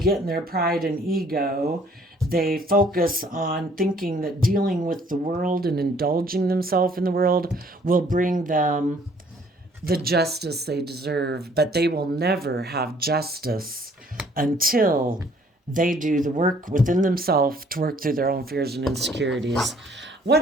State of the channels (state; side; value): normal; both; correlation 0.60